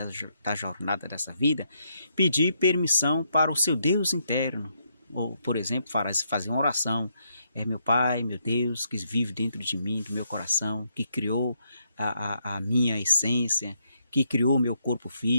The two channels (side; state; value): both; inverted; correlation -0.76